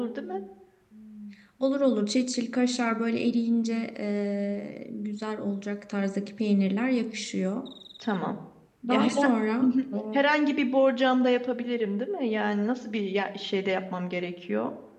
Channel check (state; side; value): identical; both; correlation 1.00